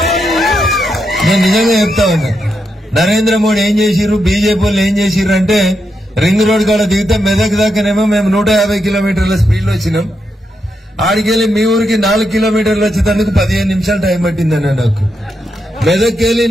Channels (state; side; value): normal; both; correlation 0.83